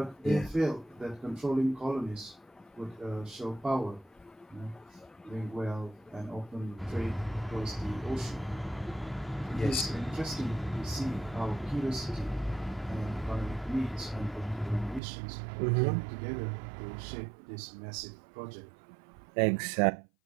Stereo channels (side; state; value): left; drops out; at 15.0 s